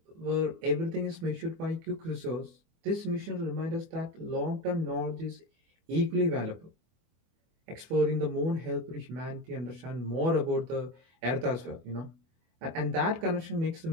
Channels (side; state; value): left; late; 24 ms